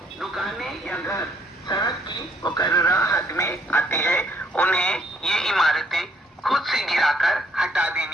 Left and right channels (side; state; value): both; normal; correlation 0.67